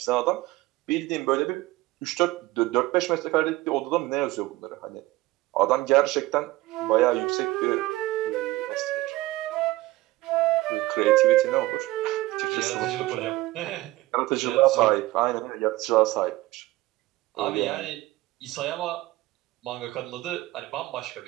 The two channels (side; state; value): left; quieter; 18.7 dB